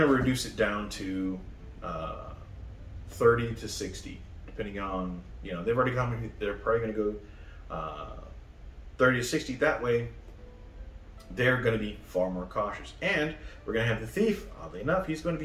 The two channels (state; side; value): identical; both; correlation 1.00